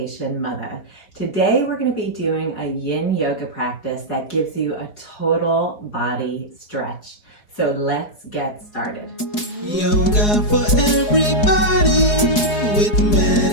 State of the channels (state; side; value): late; right; 4.8 ms